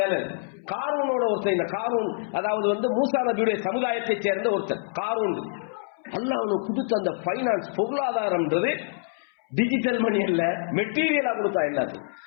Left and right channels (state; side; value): silent; right; 61 dB below the other